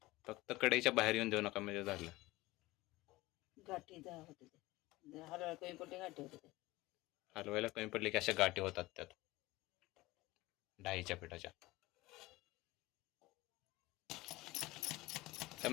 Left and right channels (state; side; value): quieter; right; 19.8 dB